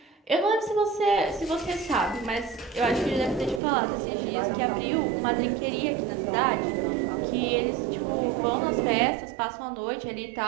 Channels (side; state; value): left; drops out; at 3.6 s